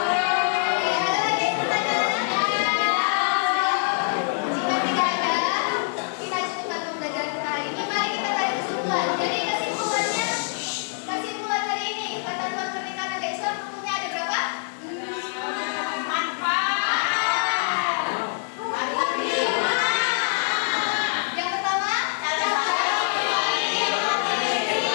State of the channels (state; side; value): silent; right; 62 dB below the other